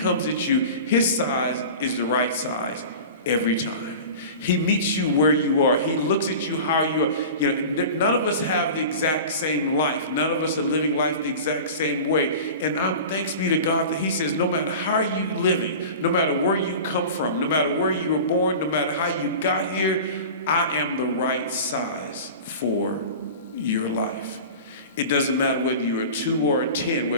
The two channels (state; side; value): inverted; both; correlation -0.35